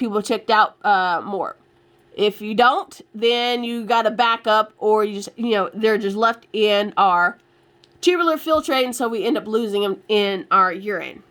checked out more. If you don't, then you got to back up, or you just, they're just left in our tubular filtrate, and so we end up losing them in our urine.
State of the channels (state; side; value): identical; both; correlation 1.00